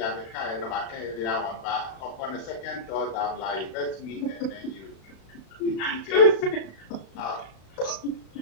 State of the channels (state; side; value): late; right; 35 ms